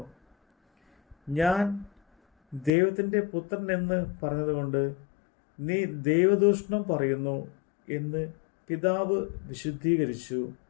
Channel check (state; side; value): drops out; right; at 2.7 s